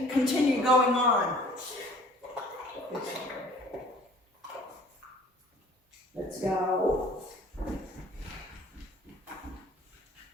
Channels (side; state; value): both; normal; correlation 0.52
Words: continue going on. Let's go.